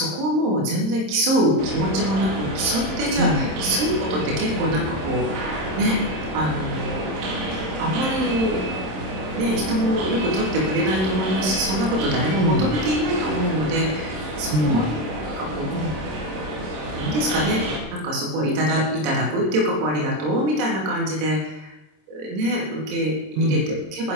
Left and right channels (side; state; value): left; late; 26 ms